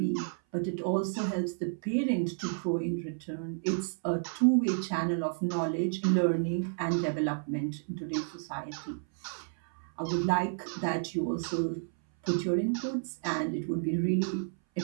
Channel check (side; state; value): left; silent; 57 dB below the other